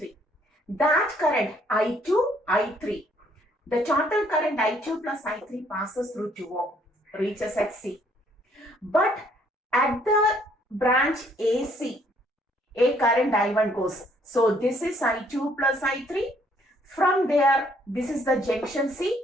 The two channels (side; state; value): both; normal; correlation 0.65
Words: That current I2, I3, the total current I2 plus I3 passes through 2 ohm, reaches at C. But at the branch AC, a current I1 goes. So this is I2 plus I3. From there, this is the junction